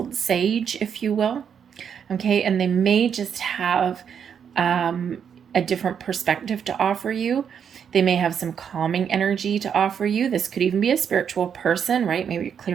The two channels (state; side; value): quieter; left; 7.7 dB